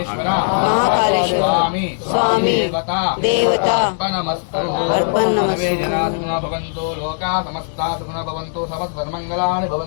మహాకాళేశ్వర స్వామి దేవత అర్పణమస్తు అర్పణమస్తు. సర్వే జనా సుఖినో భవంతు లోకా సమస్తా సుఖినో భవంతు సమస్తన్మంగళాని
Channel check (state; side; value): silent; right; digital silence